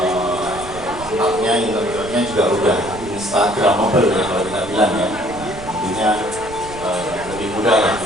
tempatnya interiornya juga udah instagramable ya kalau kita bilang ya. Tentunya lebih mudah lah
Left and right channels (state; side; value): noise; right; rumble, 15 dB below the sound